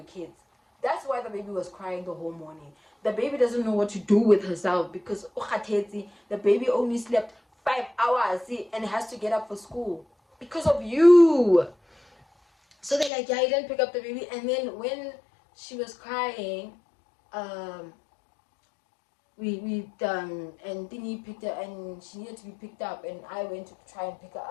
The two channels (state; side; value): drops out; right; at 13.1 s